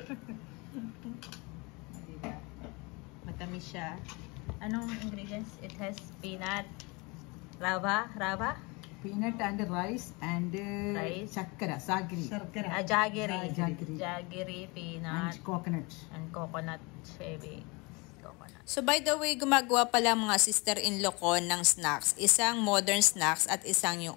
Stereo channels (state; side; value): quieter; right; 27.3 dB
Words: Matamis siya. Anong ingredients? It has peanut, rava, Peanut and rice and rice. Chakkara, sagri. Jaggery, peanut, And coconut shaving. So by the way, gumagawa pala mga sister-in-law ko ng snacks. Isang modern snacks at isang